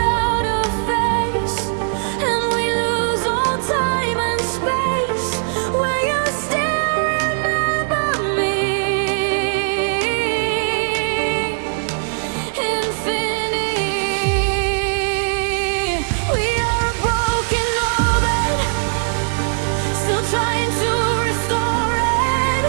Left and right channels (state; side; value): silent; left; 59 dB below the other